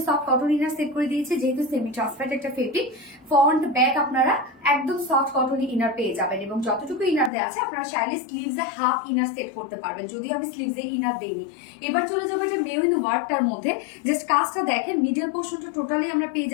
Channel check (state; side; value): drops out; right; at 7.3 s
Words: সফট কটন ইনার সেট করে দিয়েছে, যেহেতু সেমি ট্রান্সপারেন্ট একটা ফেব্রিক। ফ্রন্ট ব্যাক আপনারা একদম সফট কটন ইনার পেয়ে যাবেন, এবং যতটুকু ইনার দেওয়া আছে আপনারা চাইলে স্লিভসে হাফ ইনার সেট করতে পারবেন, যদিও আমি স্লিভসে ইনার দেইনি। এবার চলে যাবো এটা মেরুন ওয়ার্কটার মধ্যে। জাস্ট কাজটা দেখেন, মিডল পোর্শনটা টোটালি আমরা পেয়ে